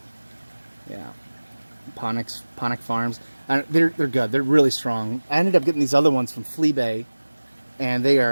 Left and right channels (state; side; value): inverted; both; correlation -1.00